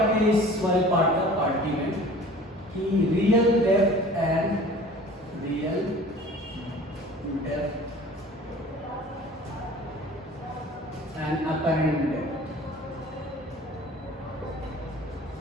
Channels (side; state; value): both; normal; correlation 0.45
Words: इस वाले पार्ट का, पार्ट डी में, कि real depth and apparent depth